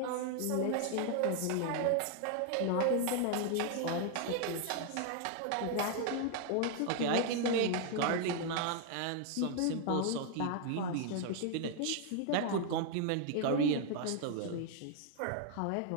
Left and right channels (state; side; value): different; both; correlation 0.00